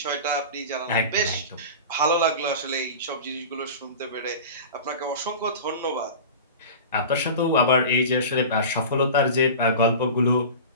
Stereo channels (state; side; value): inverted; both; correlation -0.33